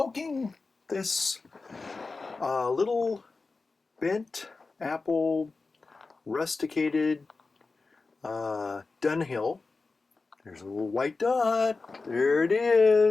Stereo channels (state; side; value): quieter; right; 3.9 dB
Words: this little bent apple rusticated Dunhill. There's a little white dot. There it